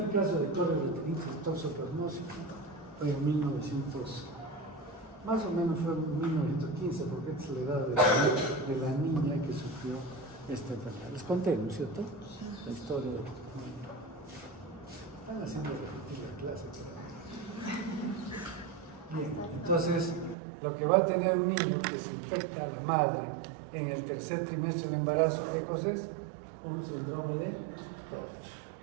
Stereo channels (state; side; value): drops out; left; at 20.4 s